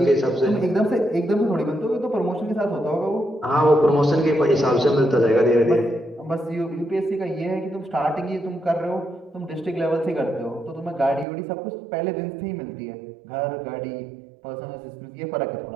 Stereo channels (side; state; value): left; drops out; at 11.2 s